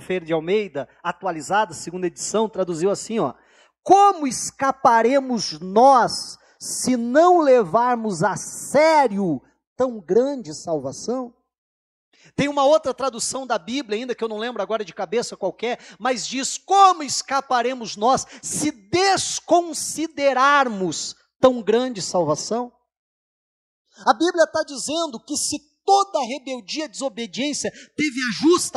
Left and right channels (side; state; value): both; identical; correlation 1.00